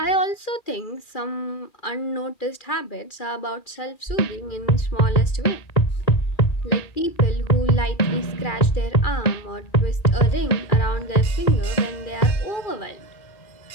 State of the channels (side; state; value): right; late; 2.4 ms